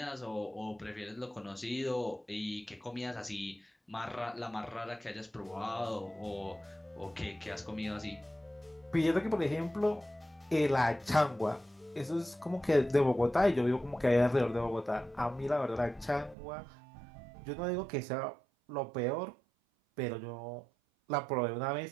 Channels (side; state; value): left; drops out; at 16.4 s